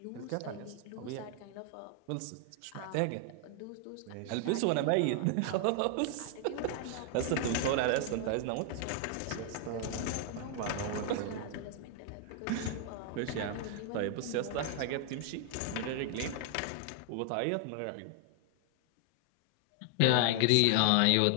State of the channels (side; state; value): both; different; correlation 0.00